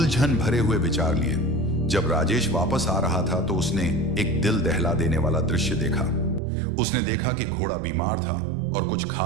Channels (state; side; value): drops out; left; at 6.4 s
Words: भरे हुए विचार लिए जब राजेश वापस आ रहा था तो उसने एक दिल दहला देने वाला दृश्य देखा। उसने देखा कि घोड़ा बीमार था और कुछ